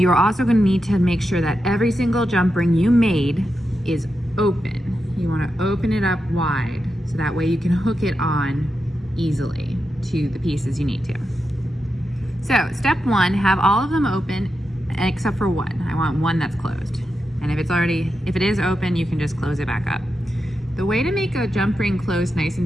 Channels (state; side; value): normal; both; correlation 0.88